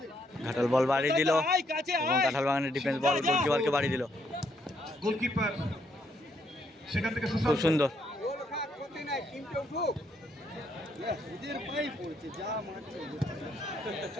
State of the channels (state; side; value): normal; both; correlation 0.73